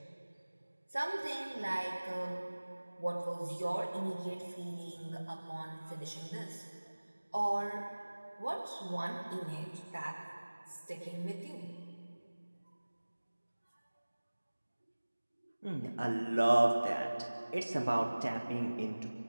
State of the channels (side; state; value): both; inverted; correlation -1.00